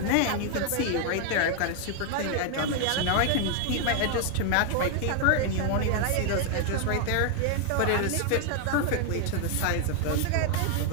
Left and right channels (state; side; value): different; both; correlation 0.00